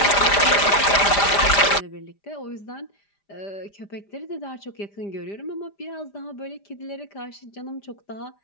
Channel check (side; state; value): right; late; 5.0 ms